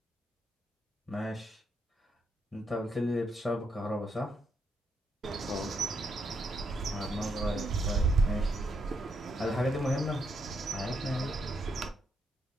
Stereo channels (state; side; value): normal; both; correlation 0.78